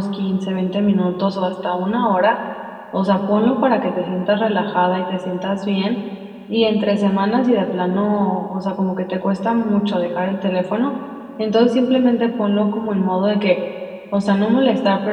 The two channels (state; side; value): identical; both; correlation 1.00